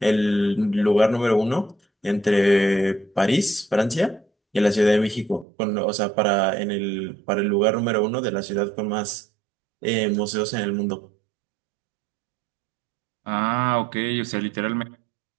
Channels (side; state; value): left; drops out; at 5.5 s